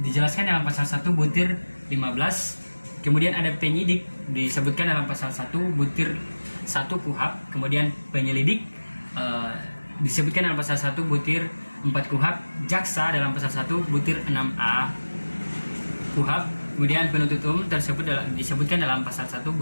dijelaskan dalam pasal 1 butir 15. Kemudian ada penyidik disebutkan dalam pasal 1 butir 1 KUHP. Kemudian penyelidik disebutkan dalam pasal 1 butir 4 KUHP. Jaksa dalam pasal 1 butir 6A KUHP. Kemudian penuntut umum disebutkan dalam pasal 1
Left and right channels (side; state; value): both; inverted; correlation -1.00